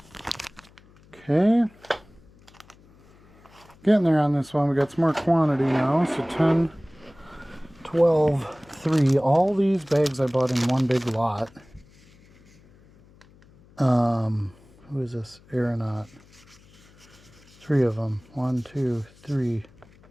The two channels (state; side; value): noise; left; hum, 27 dB below the sound